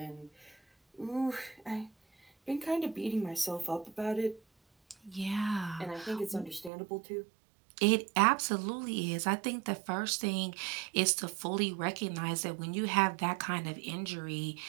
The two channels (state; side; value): drops out; left; at 6.7 s